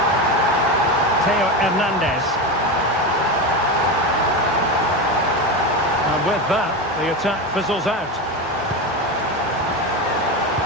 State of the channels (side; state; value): both; normal; correlation 0.19